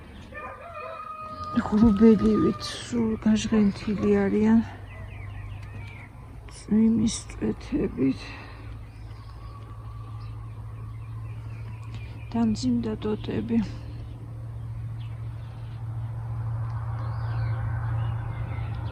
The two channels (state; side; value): identical; both; correlation 1.00